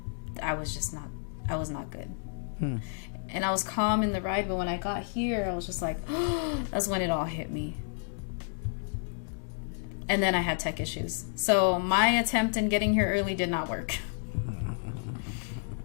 I was just not... I was not good. And I was calm in the ride, but when I got here, I was just like, that's when it all hit me. And then I had tech issues. So my attempt in getting here early did not work.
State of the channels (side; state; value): right; silent; digital silence